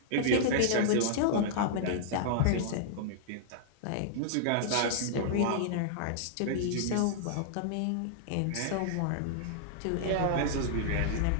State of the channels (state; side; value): different; both; correlation -0.02